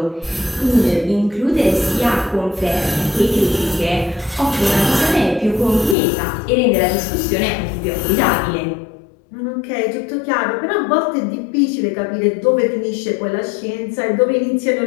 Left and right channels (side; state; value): right; drops out; at 6.0 s